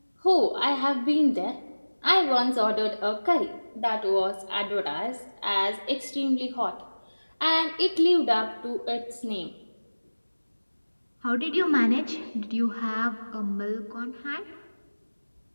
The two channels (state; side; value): inverted; both; correlation -1.00